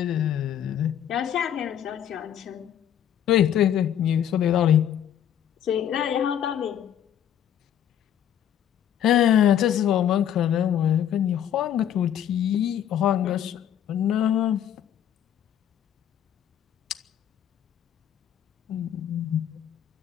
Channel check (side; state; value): right; quieter; 10.0 dB